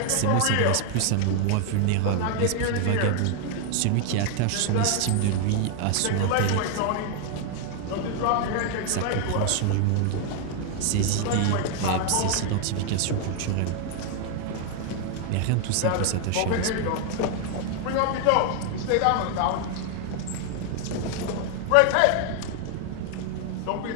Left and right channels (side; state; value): both; different; correlation 0.00